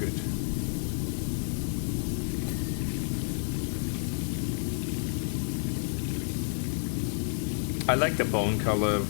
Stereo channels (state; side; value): silent; right; 58 dB below the other